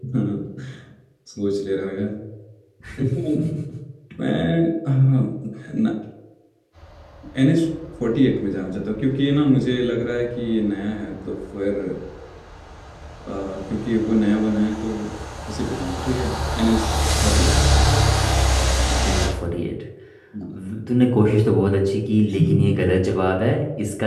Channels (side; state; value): both; identical; correlation 1.00